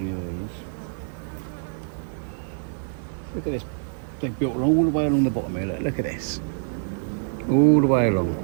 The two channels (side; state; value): left; silent; digital silence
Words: of these. Look at this. They've built all the way along the bottom here. Look at this. All the way along.